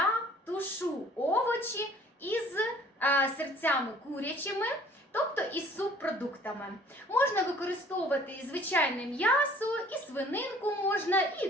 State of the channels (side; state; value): both; normal; correlation 0.54